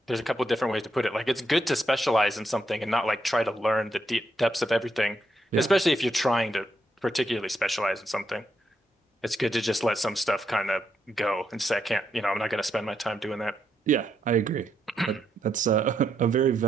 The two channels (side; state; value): both; normal; correlation 0.79